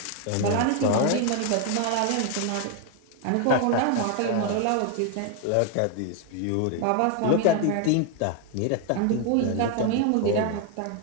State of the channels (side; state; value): both; different; correlation 0.00